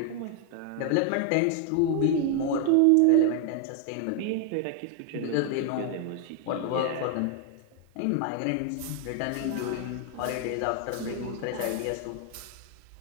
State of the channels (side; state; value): both; different; correlation 0.00